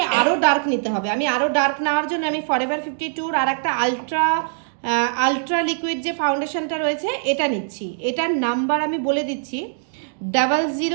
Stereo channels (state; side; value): silent; left; digital silence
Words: আরও ডার্ক নিতে হবে। আমি আরও ডার্ক নেওয়ার জন্য আমি ফরএভার 52 আর একটা আলট্রা লিকুইড যে ফাউন্ডেশনটা রয়েছে এটা নিচ্ছি। এটার নাম্বার আমি বলে দিচ্ছি